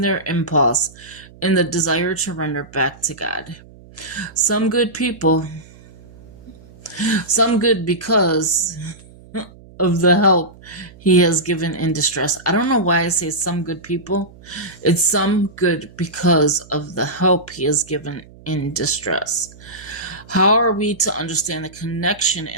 their impulse in the desire to render back to God. Some good because of the help he has given in distress. I don't know why I say some good people. It's some good because of the help he has given in distress. How are we to understand the connection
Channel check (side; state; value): right; noise; hum, 22 dB below the sound